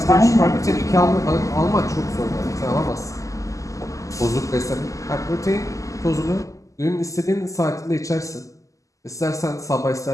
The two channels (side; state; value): right; late; 0.16 ms